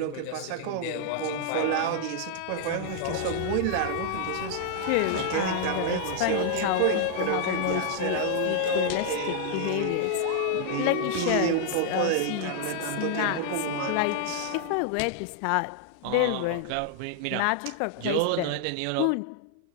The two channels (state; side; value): different; both; correlation 0.00